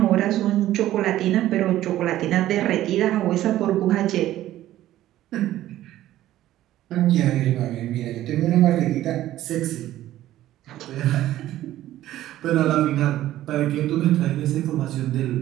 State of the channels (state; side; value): quieter; left; 13.9 dB